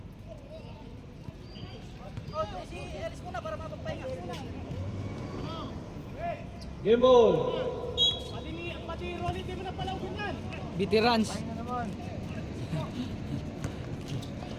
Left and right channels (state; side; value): identical; both; correlation 1.00